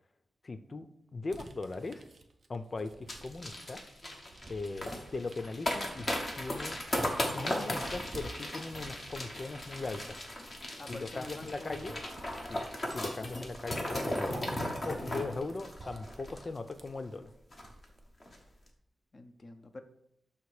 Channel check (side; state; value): both; normal; correlation 0.92